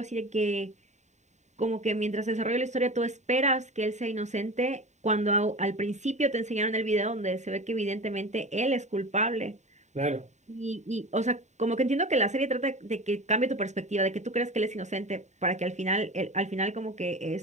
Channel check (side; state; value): left; late; 0.34 ms